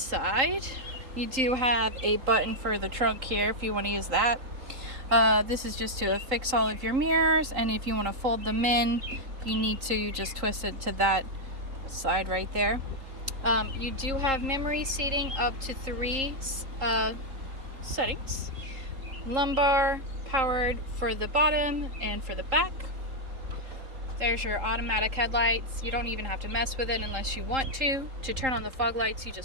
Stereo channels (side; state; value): left; late; 3.8 ms